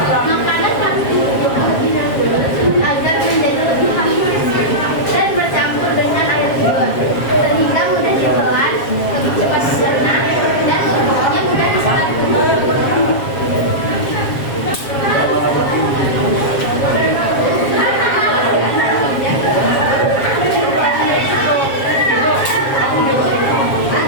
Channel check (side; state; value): right; late; 7.4 ms